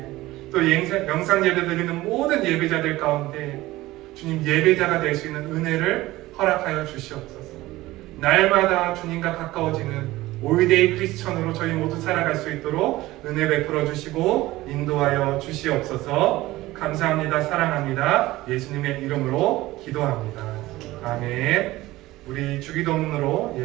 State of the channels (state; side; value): quieter; left; 17.8 dB